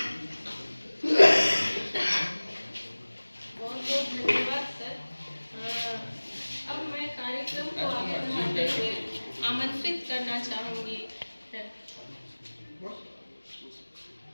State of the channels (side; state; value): both; inverted; correlation -1.00